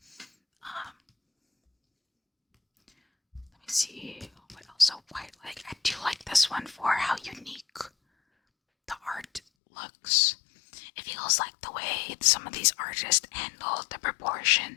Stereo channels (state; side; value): drops out; right; at 9.4 s